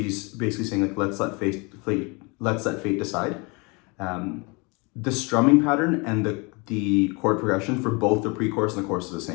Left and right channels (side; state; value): right; quieter; 29.2 dB